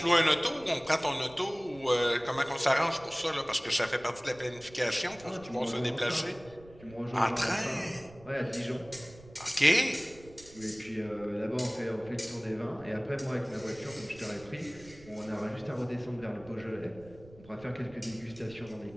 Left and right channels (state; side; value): noise; right; rumble, 21 dB below the sound